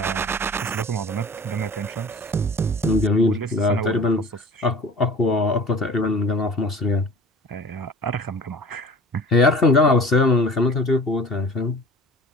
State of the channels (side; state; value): both; normal; correlation 0.42